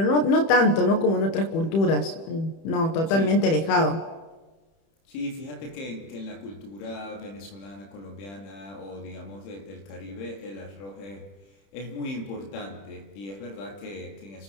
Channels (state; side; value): late; right; 31 ms